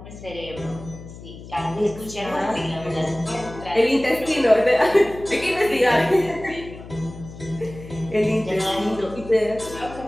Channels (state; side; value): noise; left; hum, 15 dB below the sound